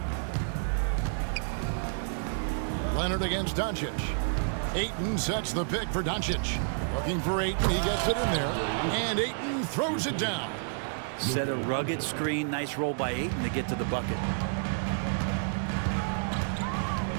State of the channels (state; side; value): silent; left; digital silence